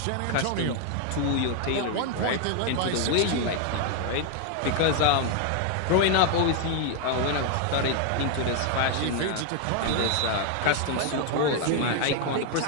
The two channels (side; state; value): both; different; correlation 0.01